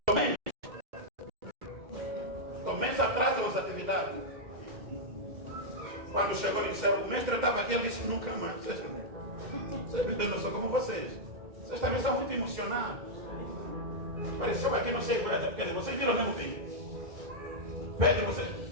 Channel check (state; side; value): late; left; 2.1 ms